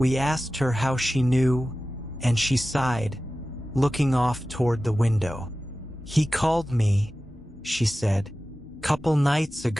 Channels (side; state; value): both; normal; correlation 0.95